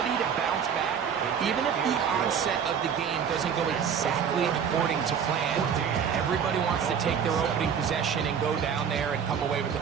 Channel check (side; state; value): left; quieter; 7.5 dB